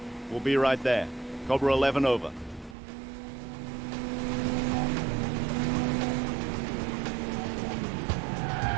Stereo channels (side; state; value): left; drops out; at 2.8 s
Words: We'll be right there. Cobra 11 over.